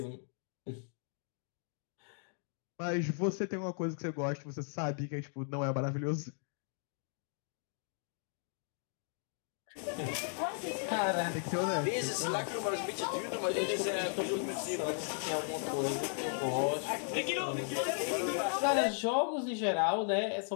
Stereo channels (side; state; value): right; silent; 54 dB below the other